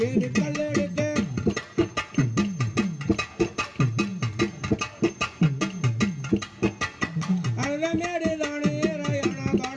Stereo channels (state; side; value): identical; both; correlation 1.00